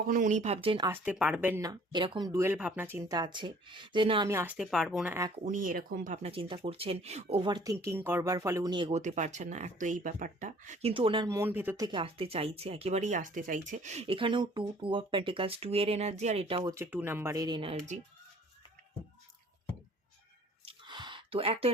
উনি ভাবছেন আসতে পারবেন না, এরকম ডুয়েল ভাবনা চিন্তা আছে, যে না আমি আসতে পারবো না। এক, উনি এরকম ভাবনা চিন্তা করছেন, ওভার থিঙ্কিং করবার ফলে উনি এগোতে পারছেন না, এক তো এই ব্যাপারটা। কিন্তু ওনার মন ভেতর থেকে আসতে চাইছে, একেবারেই আসতে চাইছে। এখানেও টু অফ পেন্টিকালস, 2 এর এনার্জি, আর এটাও হচ্ছে 2 নাম্বারের এনার্জি। তো এক তো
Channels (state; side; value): normal; both; correlation 0.54